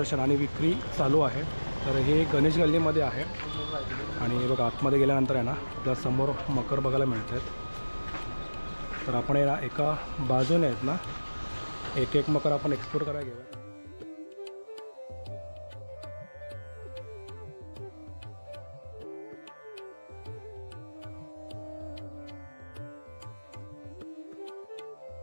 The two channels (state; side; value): inverted; both; correlation -1.00